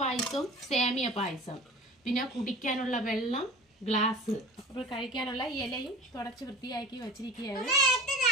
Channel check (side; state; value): both; normal; correlation 0.40